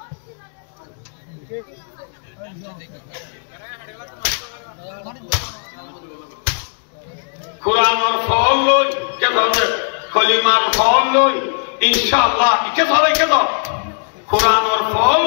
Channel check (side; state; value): right; silent; digital silence